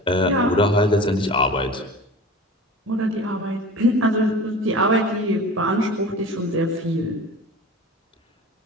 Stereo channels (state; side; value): normal; both; correlation 0.37